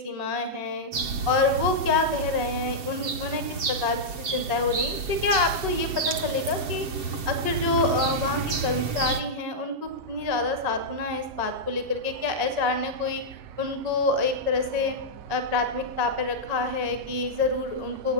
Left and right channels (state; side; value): late; left; 7.5 ms